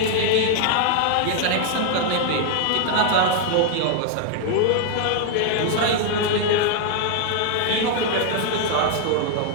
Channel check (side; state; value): both; different; correlation 0.00